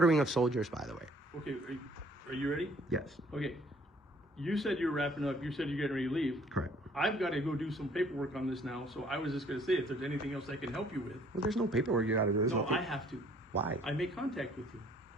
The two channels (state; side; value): normal; both; correlation 0.59